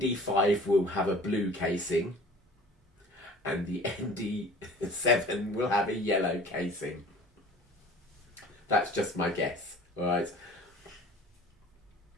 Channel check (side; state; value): both; normal; correlation 0.46